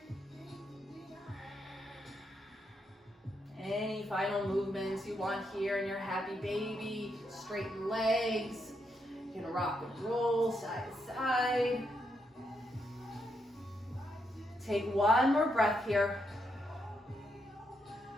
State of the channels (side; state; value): both; normal; correlation 0.80